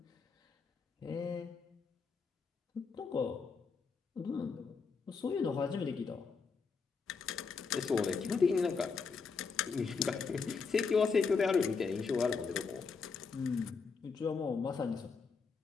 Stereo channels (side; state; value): right; quieter; 5.1 dB